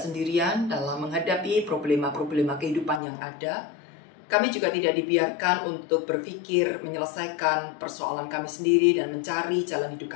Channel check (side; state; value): right; drops out; at 3.0 s